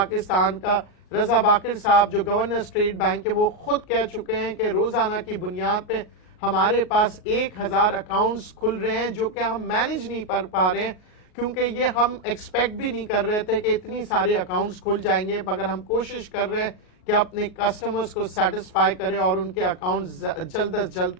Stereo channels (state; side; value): late; right; 38 ms